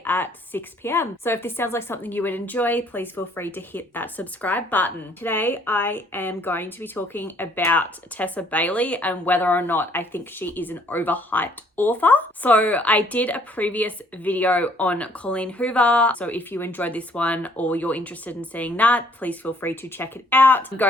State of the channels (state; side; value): normal; both; correlation 0.62